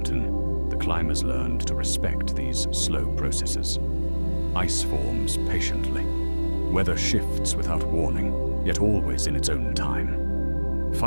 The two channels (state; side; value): inverted; both; correlation -1.00